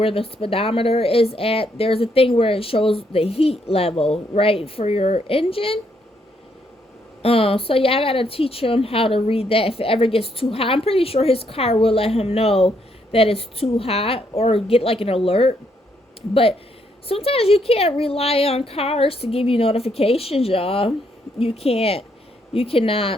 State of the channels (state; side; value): normal; both; correlation 0.74